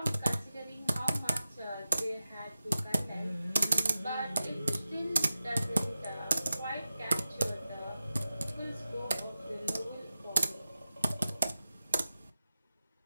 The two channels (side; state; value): both; inverted; correlation -0.93